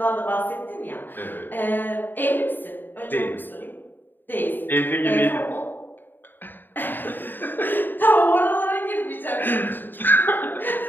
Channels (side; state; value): right; late; 0.093 ms